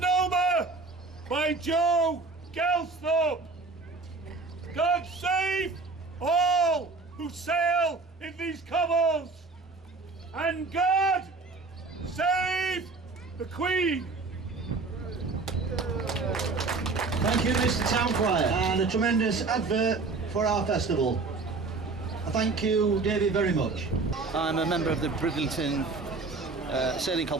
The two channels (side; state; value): left; quieter; 3.9 dB